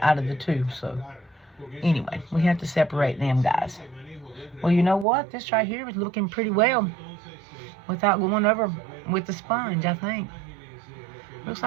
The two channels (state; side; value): drops out; left; at 5.1 s